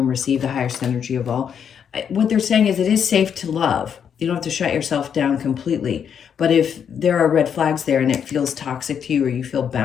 receive the highest energy of all. What they're saying is it is safe to love. You don't have to shut yourself down completely. But if there are red flags there and it feels toxic to you, or you feel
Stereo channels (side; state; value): right; quieter; 7.9 dB